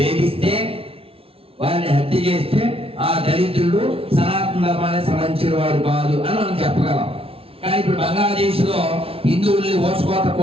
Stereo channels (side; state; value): left; late; 0.27 ms